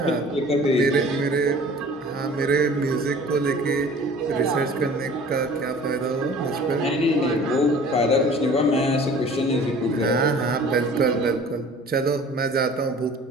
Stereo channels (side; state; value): both; normal; correlation 0.47